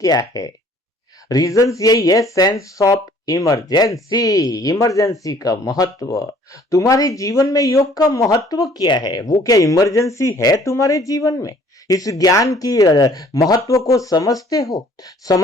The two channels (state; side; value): normal; both; correlation 0.57